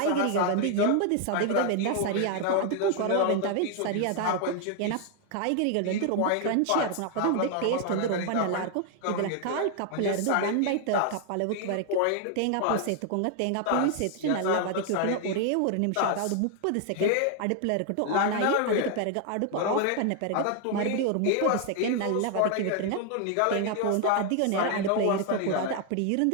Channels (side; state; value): both; different; correlation 0.00